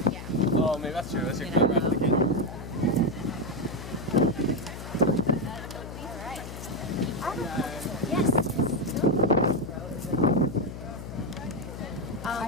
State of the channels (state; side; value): noise; left; hum, 10 dB below the sound